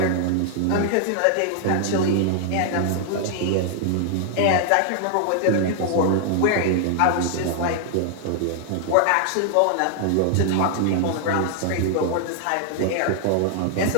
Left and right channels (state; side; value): different; both; correlation 0.00